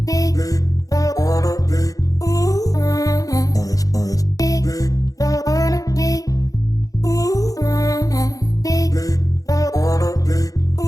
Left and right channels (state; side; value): late; right; 0.17 ms